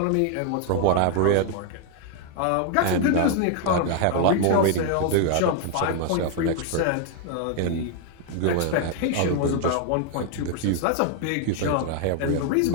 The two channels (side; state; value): both; different; correlation 0.00